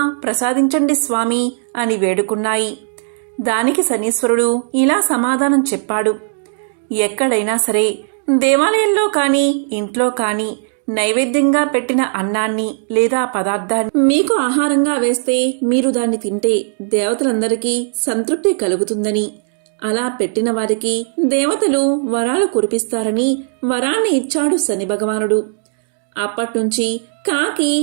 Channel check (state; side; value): silent; left; 68 dB below the other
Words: ప్రసాదించండి స్వామి అని వేడుకున్నాయి. దానికి శనీశ్వరుడు ఇలా సమాధానం చెప్పాడు. ఎక్కడైనా సరే దేవాలయంలో కానీ ఇంట్లో కానీ నైవేద్యంగా పెట్టిన అన్నాన్ని లేదా పదార్థాన్ని మీకు ఆహారంగా వేస్తే మీరు దాన్ని తింటే దేవతలందరికీ సంతృప్తి కలుగుతుందని, అలా పెట్టిన వారికి దేవతలు వరాలు కురిపిస్తారని వరాన్ని ఇచ్చాడు శని భగవానుడు. అప్పట్నుంచి కాకి